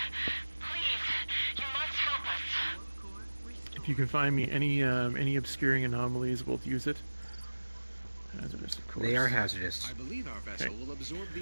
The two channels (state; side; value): inverted; both; correlation -1.00